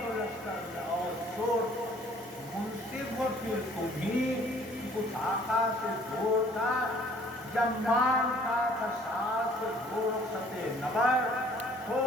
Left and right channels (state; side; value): normal; both; correlation 0.57